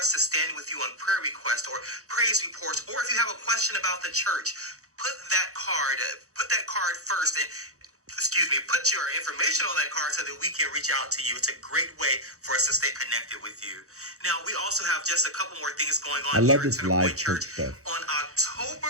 to stand with you on prayer requests or praise reports, or if you have a question about the church, put that card first, and put your information on that card so that we can reach out to you. It's a great way for us to stay connected with you. Now, we also have just a couple more things going on. I love here this at live Centrepoint church stuff. On October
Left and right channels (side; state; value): left; late; 0.65 ms